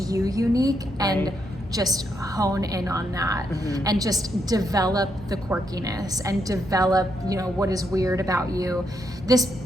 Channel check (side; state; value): both; normal; correlation 0.79